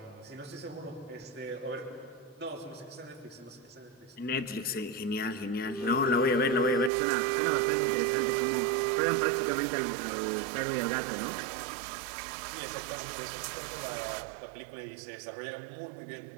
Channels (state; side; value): drops out; left; at 6.9 s